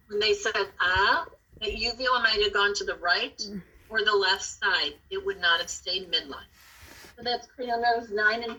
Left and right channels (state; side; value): identical; both; correlation 1.00